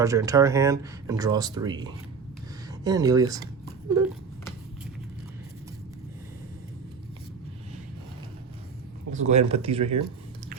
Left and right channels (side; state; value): left; quieter; 5.5 dB